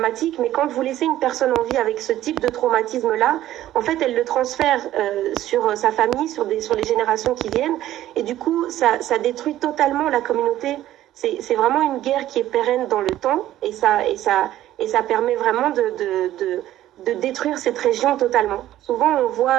mais quand vous laissez une personne en vie avec ce type de traumatisme là, en fait elle le transfère sur sa famille, sur les générations qui viennent, et du coup ça détruit totalement la communauté. C'est vraiment une guerre qui est pérenne dans le temps, et et ça permet vraiment de détruire cette région totalement. Souvent,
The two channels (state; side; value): quieter; left; 13.6 dB